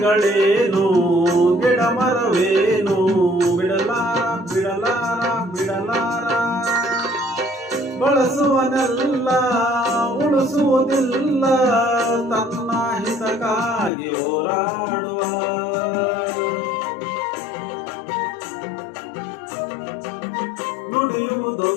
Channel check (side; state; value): right; drops out; at 13.9 s